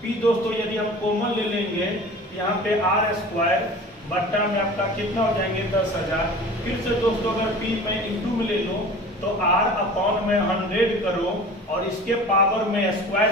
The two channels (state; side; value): normal; both; correlation 0.40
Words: P दोस्तों यदि हम कॉमन ले लेंगे, यहाँ पे R स्क्वायर बट्टा में आपका कितना हो जाएंगे 10,000। फिर से दोस्तों अगर P में इंटू में ले लो तो R अपॉन में 100 करो, और इसके पावर में